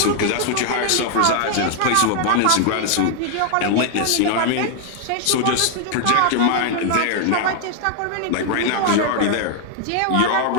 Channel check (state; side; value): different; both; correlation 0.00